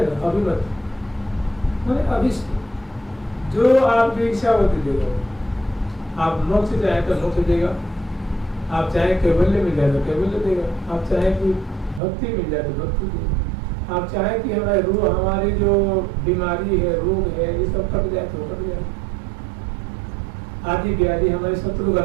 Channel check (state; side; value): drops out; left; at 12.0 s